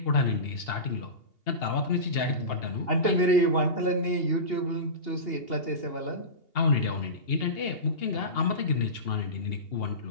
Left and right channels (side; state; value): right; late; 2.8 ms